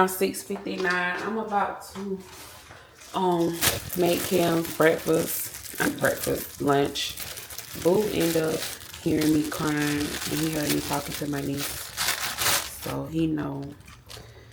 6:59. I'm about to make Kim's lunch. Boo ended up hearing me crying, and he heard me talking to my niece, so he know.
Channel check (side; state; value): both; identical; correlation 1.00